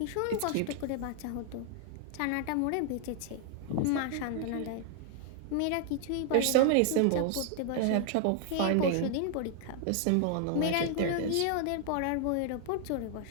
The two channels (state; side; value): different; both; correlation 0.00